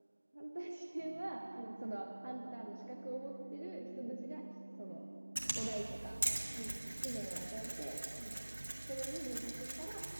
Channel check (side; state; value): both; inverted; correlation -1.00